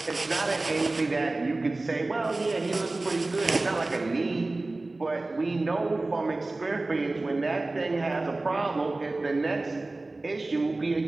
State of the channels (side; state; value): left; quieter; 3.1 dB